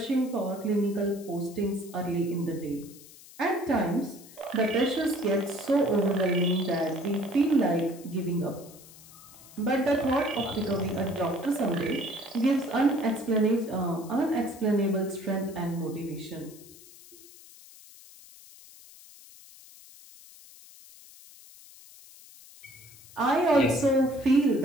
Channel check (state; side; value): noise; left; hiss, 21 dB below the sound